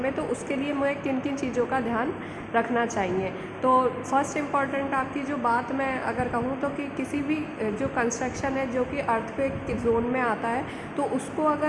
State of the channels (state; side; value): identical; both; correlation 1.00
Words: तो उसके लिए मुझे किन किन चीज़ों का ध्यान रखना चाहिए। तो फर्स्ट इम्पॉर्टेंट आपकी जो बात मैं अगर कहूँ तो कि किसी भी जो कंस्ट्रक्शन है जो कि अर्थक्वेक के जोन में आता है तो उसको